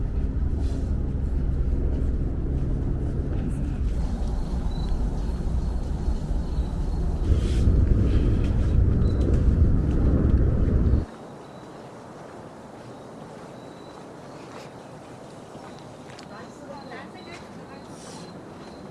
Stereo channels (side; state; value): both; identical; correlation 1.00